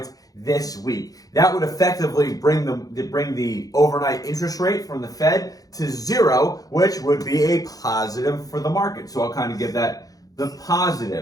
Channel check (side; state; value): right; late; 0.18 ms